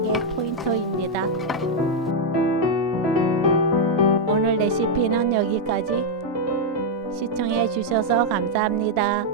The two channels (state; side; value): normal; both; correlation -0.01